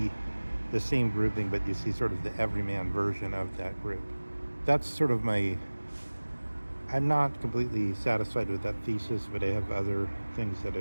the same grouping, but you see sort of the everyman version of that group. That's sort of I'm not completely satisfied with that thesis, but I have other things that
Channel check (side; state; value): both; inverted; correlation -1.00